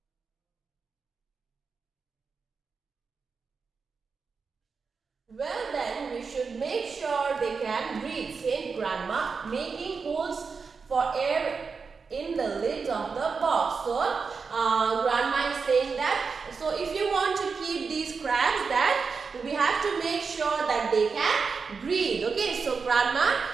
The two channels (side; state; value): left; quieter; 5.1 dB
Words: Well then, we should make sure they can breathe, said Grandma, making holes for air in the lid of the box. So, Grandma is saying that, so if you want to keep these crabs, that we have to make sure that they can breathe. Okay, so Grandma,